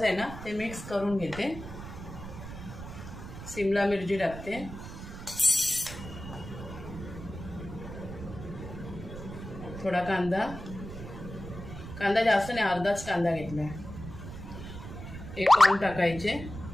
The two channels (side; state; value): right; noise; rumble, 11 dB below the sound